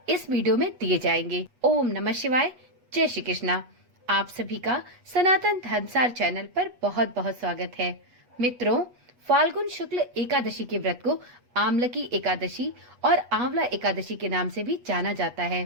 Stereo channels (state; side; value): late; left; 8.2 ms